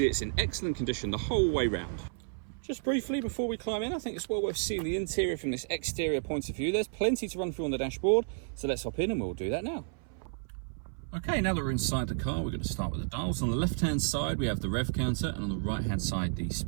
it's in excellent condition the whole way round. Just briefly before we climb in, I think it's well worth seeing the interior from this exterior point of view. There's plenty to run through on the dashboard, so let's hop in and we'll do that now. Okay, now that we're inside the car, we're going to start with the dials. On the left-hand side, we have the rev counter, and on the right-hand side, the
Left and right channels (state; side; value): silent; left; 57 dB below the other